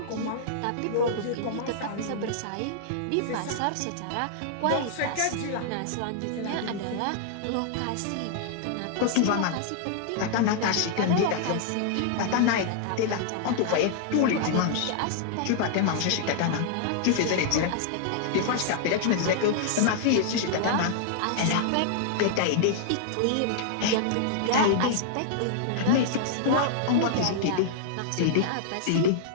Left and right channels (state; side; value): different; both; correlation -0.01